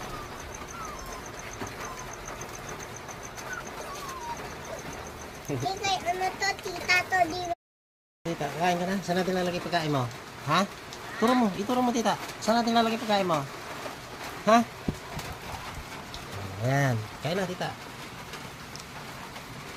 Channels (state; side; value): identical; both; correlation 1.00